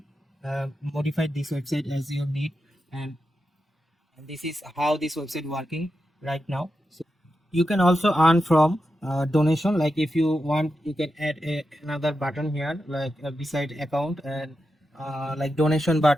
modify this website as you need, and this is how this website working right now. So you can also earn from donation. Like if you want, you can add another button here, like beside account, and like donation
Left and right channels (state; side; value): normal; both; correlation 0.89